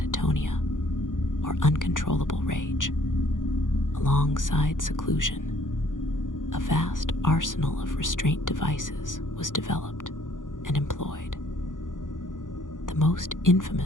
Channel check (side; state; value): right; late; 0.88 ms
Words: or uncontrollable rage. Alongside seclusion, a vast arsenal of restraint devices was developed and employed. The most